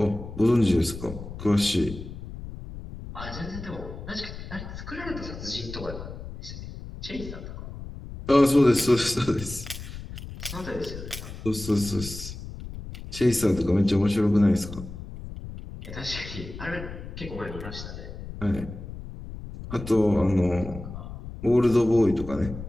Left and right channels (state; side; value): noise; left; rumble, 11 dB below the sound